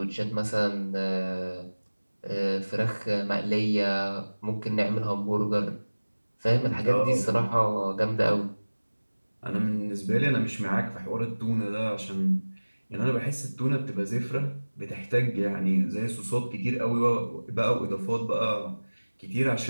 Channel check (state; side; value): inverted; both; correlation -1.00